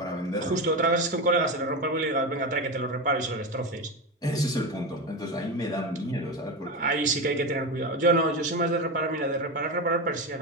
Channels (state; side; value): normal; both; correlation 0.19